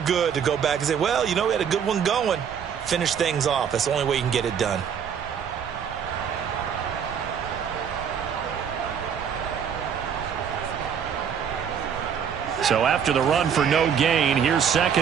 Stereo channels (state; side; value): quieter; left; 7.7 dB